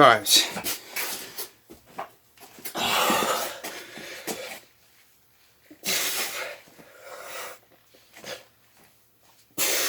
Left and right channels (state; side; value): identical; both; correlation 1.00